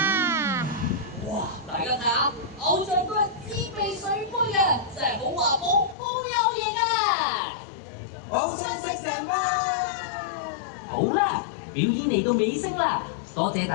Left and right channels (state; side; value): drops out; right; at 6.0 s